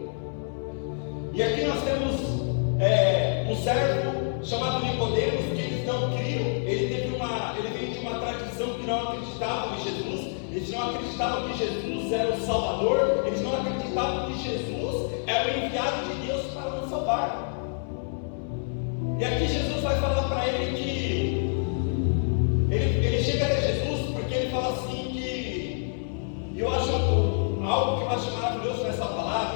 E aqui nós temos um servo chamado Nicodemos, que eles não criam. Ele veio de uma tradição que não acreditava em Jesus. Eles não acreditavam que Jesus era o Salvador, eles não acreditavam que Jesus era o enviado de Deus para nos salvar. E aqui Jesus vai falar para ele que ele chega até Jesus, porque ele fala assim que, eu acho algo que eu acho maravilhoso nessa palavra,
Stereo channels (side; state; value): right; silent; 58 dB below the other